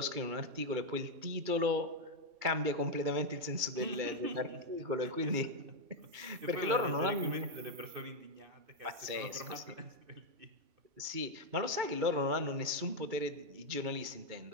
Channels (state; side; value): late; left; 2.3 ms